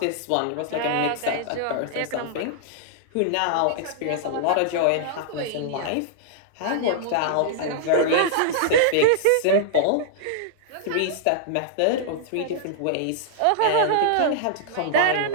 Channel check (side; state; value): both; different; correlation -0.01